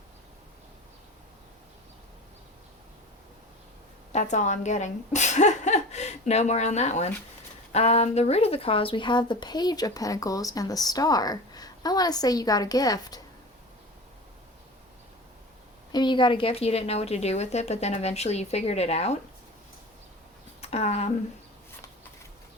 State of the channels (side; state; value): both; normal; correlation 0.34